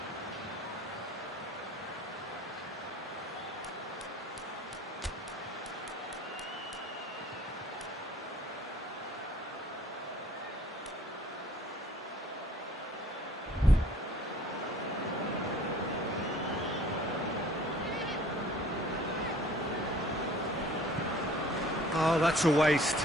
Oh, that's a waste.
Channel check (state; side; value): normal; both; correlation 0.52